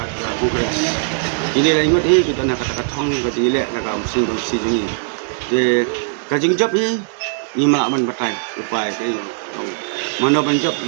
kongres ini lah ingat kita nak kata katong kaji le nak mesin bersih jungi de kajing job ni malaman batai upai ke mana ban job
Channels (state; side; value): silent; left; digital silence